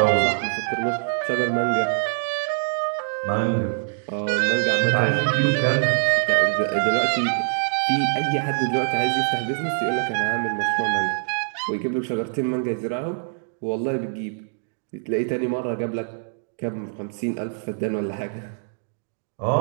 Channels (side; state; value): left; silent; digital silence